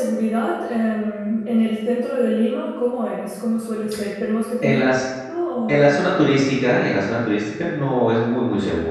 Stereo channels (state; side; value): identical; both; correlation 1.00